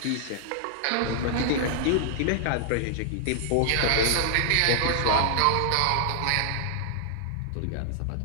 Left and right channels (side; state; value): both; different; correlation -0.01